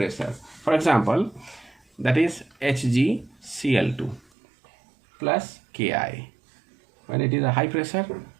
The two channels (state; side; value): drops out; left; at 4.2 s